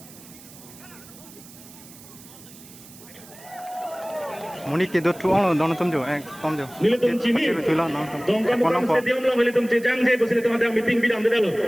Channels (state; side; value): noise; right; hiss, 20 dB below the sound